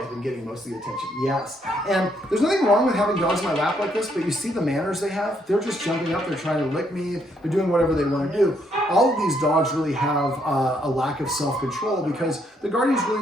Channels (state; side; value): normal; both; correlation 0.72